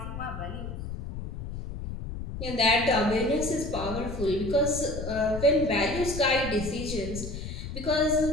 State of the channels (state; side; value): noise; left; rumble, 7 dB below the sound